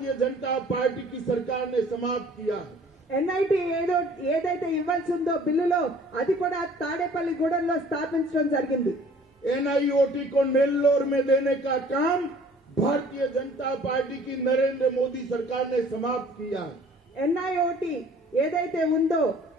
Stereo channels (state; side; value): normal; both; correlation 0.52